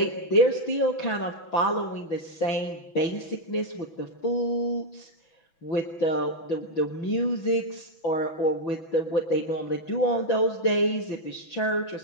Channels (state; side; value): late; right; 6.1 ms